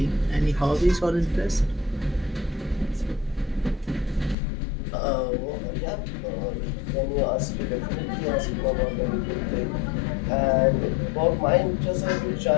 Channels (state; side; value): drops out; right; at 4.4 s